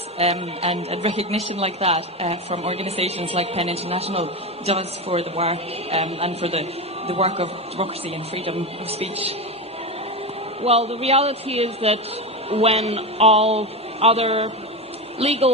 and recognition like that from organisations like PEN International does for the work and for the work of democracy and freedom of speech. Well, the reality is that when all other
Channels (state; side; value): normal; both; correlation 0.18